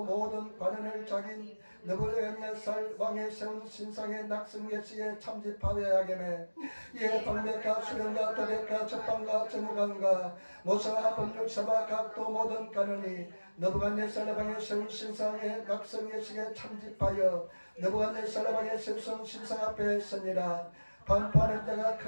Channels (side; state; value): both; inverted; correlation -1.00